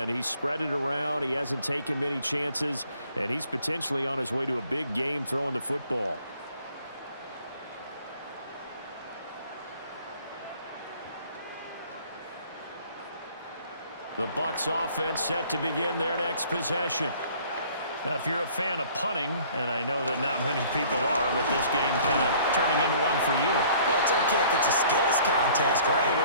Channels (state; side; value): inverted; both; correlation -0.55